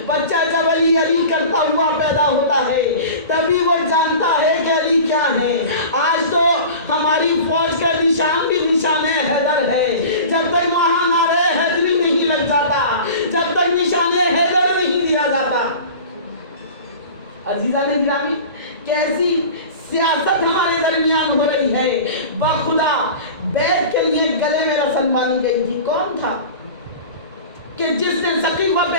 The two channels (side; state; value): both; inverted; correlation -0.37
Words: بچہ جب علی علی کرتا ہوا پیدا ہوتا ہے تبھی وہ جانتا ہے کہ علی کیا ہے. آج تو ہماری فوج کا نشان بھی نشان حیدر ہے. جب تک وہاں نعرہ حیدری نہیں لگ جاتا, جب تک نشان حیدر نہیں دیا جاتا. عزیزان گرامی, کیسی سیاست ہمارے درمیان ہو رہی ہے. بخدا بیعت کے لیے گلے میں رسن باندھی گئی تھی. کون تھا کہ جس نے ثقیفہ پہ